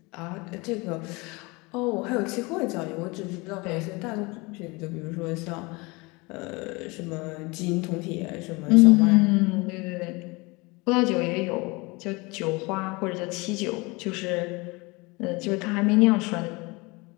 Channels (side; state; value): right; quieter; 25.6 dB